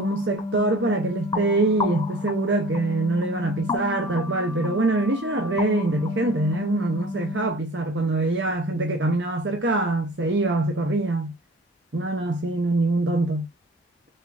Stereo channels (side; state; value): both; normal; correlation 0.46